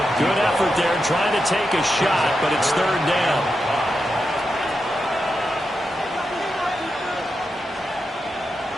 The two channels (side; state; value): both; normal; correlation 0.87